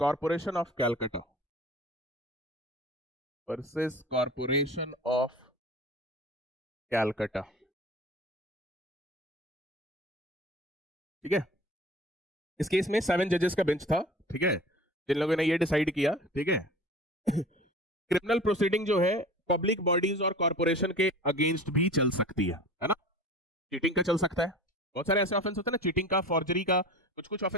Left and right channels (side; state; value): both; normal; correlation 0.40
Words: of Calcutta. Versus Corporation of Calcutta. ठीक है, इस केस में 7 जजेस का बेंच था, ठीक है, जिन लोगों ने ये डिसाइड किया, ठीक है, क्रिमिनल प्रोसीडिंग जो है पब्लिक बॉडीज और कॉर्पोरेशन के अगेंस्ट भी चल सकती है ना। चीटिंग का चल सकता है, बहुत सारे ऐसे ऑफेंस होते हैं ना, चीटिंग का, फॉर्जरी का। कुछ कुछ